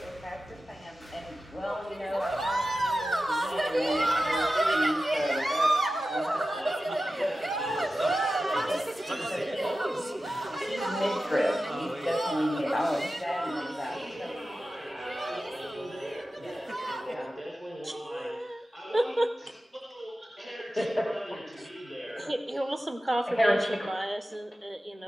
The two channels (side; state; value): both; normal; correlation 0.94